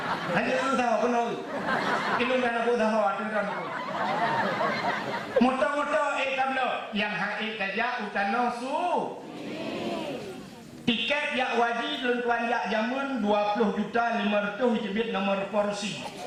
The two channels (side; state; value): both; identical; correlation 1.00